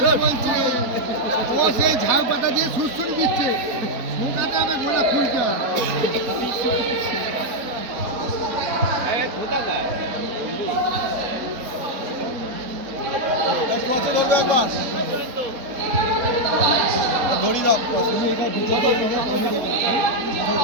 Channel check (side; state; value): left; late; 4.0 ms